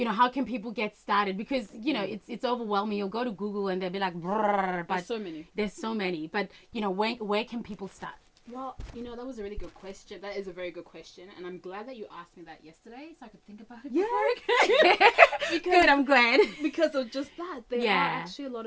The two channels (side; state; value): both; identical; correlation 1.00